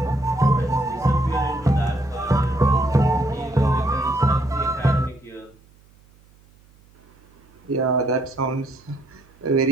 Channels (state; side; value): noise; right; hum, 29 dB below the sound